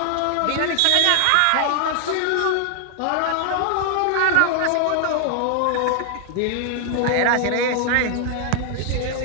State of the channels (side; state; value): both; different; correlation 0.00